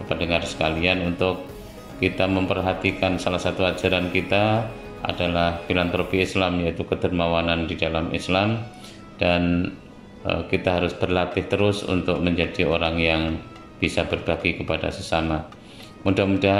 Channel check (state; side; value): identical; both; correlation 1.00